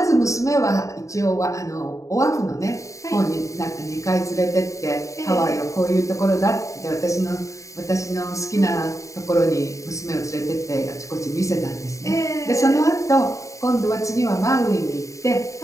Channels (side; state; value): right; late; 0.15 ms